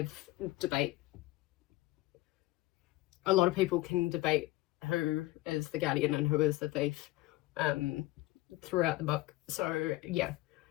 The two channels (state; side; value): quieter; right; 18.8 dB